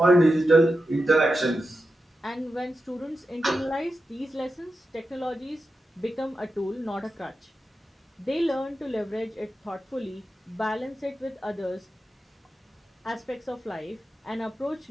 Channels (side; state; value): both; normal; correlation 0.90